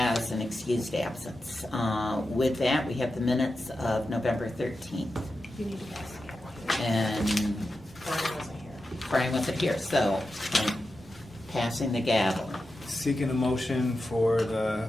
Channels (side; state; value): both; normal; correlation 0.91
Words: an excused absence. With that, we have the minutes of November 13th. You need to pass. And Brian wasn't here. Brian wasn't here, so I'm passing the gavel. Seeking a motion